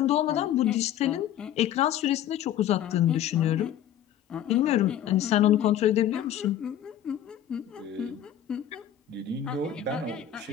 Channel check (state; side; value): quieter; right; 10.7 dB